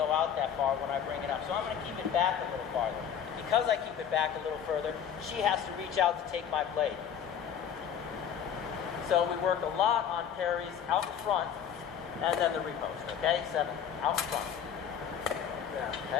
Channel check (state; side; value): quieter; right; 8.6 dB